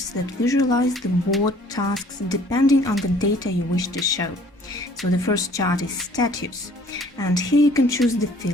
that visualize the board tasks depending on the data you wish to show. So the first chart is status, and here you can choose the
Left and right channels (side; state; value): both; normal; correlation 0.56